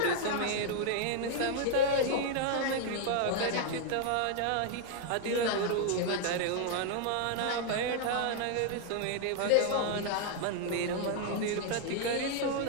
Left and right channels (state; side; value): different; both; correlation 0.00